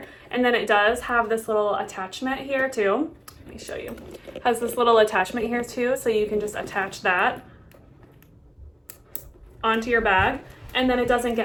And then it does have this little attachment here too. Let me show you. It has this little attachment here too, so you can just attach that onto your bag, and then it doesn't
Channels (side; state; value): both; identical; correlation 1.00